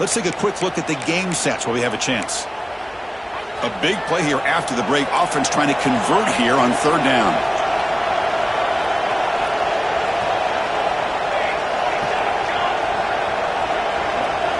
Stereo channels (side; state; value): both; identical; correlation 1.00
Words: take a quick look at the game stats while we have a chance. A big play here after the break. Offense trying to convert here on third down.